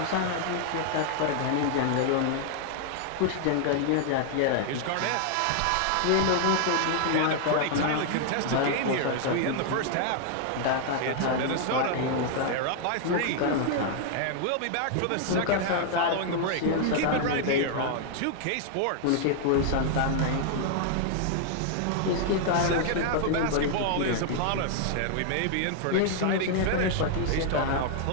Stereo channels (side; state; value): both; different; correlation 0.00